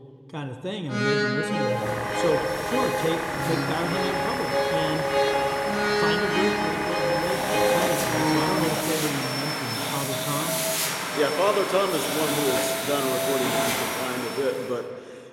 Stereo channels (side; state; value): both; identical; correlation 1.00